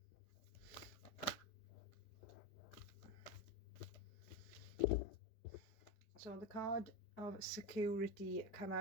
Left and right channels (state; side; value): late; right; 5.0 ms